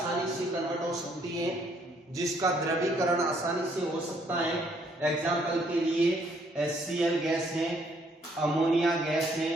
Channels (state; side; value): normal; both; correlation 0.67